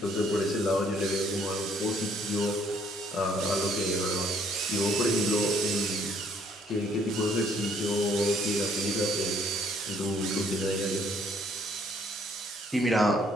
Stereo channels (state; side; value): normal; both; correlation 0.64